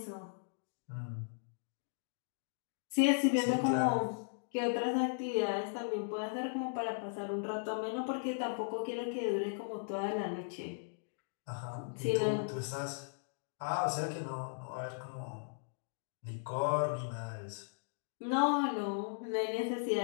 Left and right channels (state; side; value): silent; right; digital silence